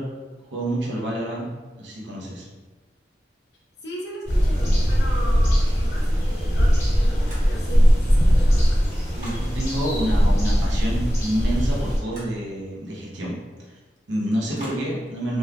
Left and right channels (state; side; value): normal; both; correlation 0.95